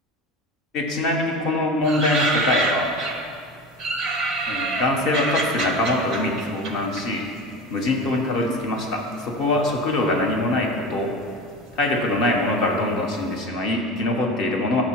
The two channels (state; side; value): normal; both; correlation 0.30